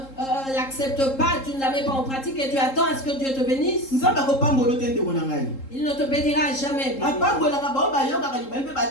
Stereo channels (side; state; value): right; late; 3.7 ms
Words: l'acceptes pas, tu ne la mets pas en pratique et tu attends à ce que Dieu te bénisse. Il ne te bénira jamais.